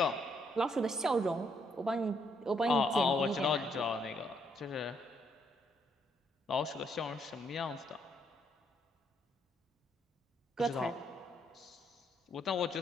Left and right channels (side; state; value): both; normal; correlation 0.72